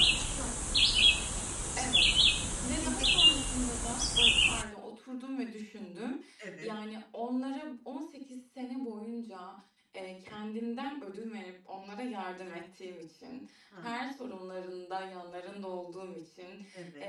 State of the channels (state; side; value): identical; both; correlation 1.00